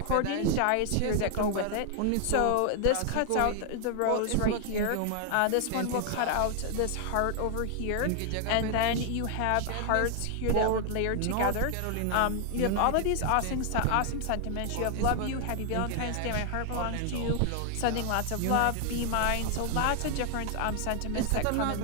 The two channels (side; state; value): both; different; correlation 0.00